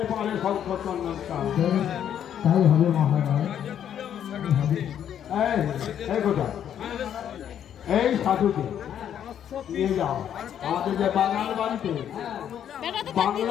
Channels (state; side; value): quieter; right; 9.6 dB